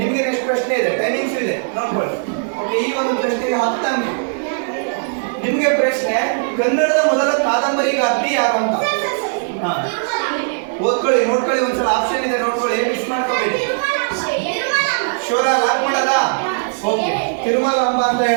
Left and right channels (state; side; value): silent; left; digital silence